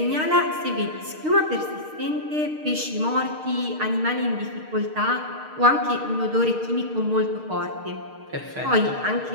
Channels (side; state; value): left; late; 6.5 ms